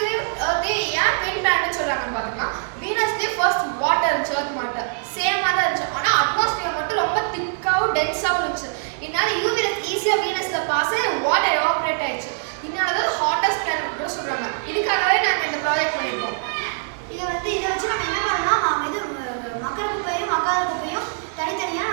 ஏன் ட்வின் பிளானட்னு சொல்கிறாங்கன்னு பார்த்தோம்னா வீனஸ்லேயே ஃபர்ஸ்ட் வாட்டர் இருந்துச்சு, எர்த் வாட்டர் சேமாக தான் இருந்துச்சு. ஆனால் அட்மாஸ்பியர் மட்டும் ரொம்ப திக்காகவும் டென்ஸாகவும் இருந்துச்சு. இதனால யூவி ரேஸ் ஈஸியாக வீனஸில் பாஸ் ஆகி வாட்டர் எவாபரேட் ஆயிடுச்சு. இதனால தான் ஹாட்டஸ்ட் பிளானட் கூட சொல்கிறாங்க. இதுக்காகவே நாங்கள் இந்த ப்ராஜெக்ட் பண்ணியிருக்கோம். இதை வச்சு நம்ம என்ன பண்ணோம்னா நாம் இது மக்கர குப்பையும் மக்காத குப்பையும் தனித்தனியாக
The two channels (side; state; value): left; silent; digital silence